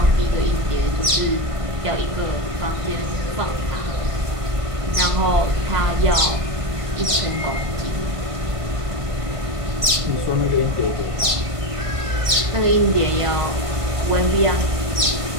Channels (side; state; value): left; late; 1.5 ms